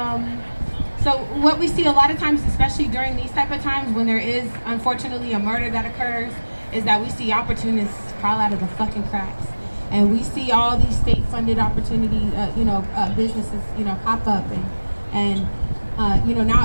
So what we see a lot of times, especially during these type of times when there is unfortunately a murder that occurs, is that we see opportunists crawl out of the fucking cracks. And we see all these state-funded opportunity, businesses, pop up, and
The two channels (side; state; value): both; inverted; correlation -1.00